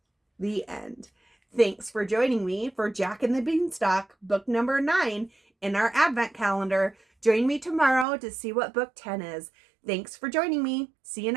The end. Thanks for joining me for Jack and the Beanstalk, book number 9 in our Advent calendar. Join me tomorrow to see what book 10 is. Thanks for joining me. See you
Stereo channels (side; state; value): left; drops out; at 8.1 s